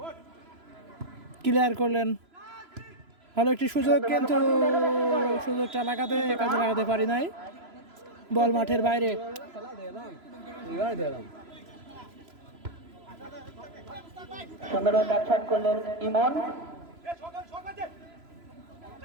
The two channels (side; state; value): left; late; 3.0 ms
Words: ক্লিয়ার করলেন, ভালো একটি সুযোগ, কিন্তু সুযোগটা কাজে লাগাতে পারি নাই। বল মাঠের বাইরে। সুন্দরভাবে ব্যাটশট করলেন ইমন।